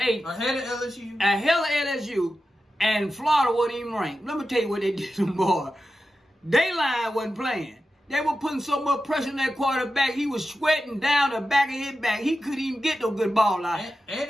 Ahead of LSU. Ahead of LSU. And Florida wasn't even ranked. Let me tell you what they did to them boys. They line wasn't playing. They were putting so much pressure on that quarterback. He was sweating down the back of his back. He couldn't even get no good ball out. And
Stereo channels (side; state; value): both; normal; correlation 0.92